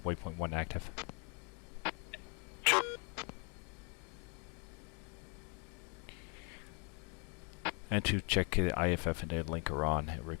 waypoint 1 active. 2. And to check the IFF and data link are on,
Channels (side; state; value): right; quieter; 37.1 dB